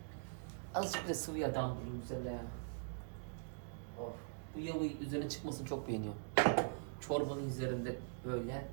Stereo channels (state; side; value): silent; left; digital silence